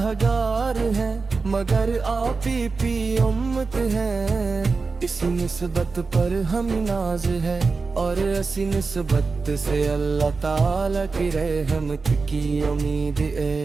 گار ہیں مگر آپ ہی امت ہیں، اس نسبت پر ہم ناز ہے اور اسی نسبت سے اللہ تعالیٰ کی رحمت کی امید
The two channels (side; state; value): left; quieter; 4.3 dB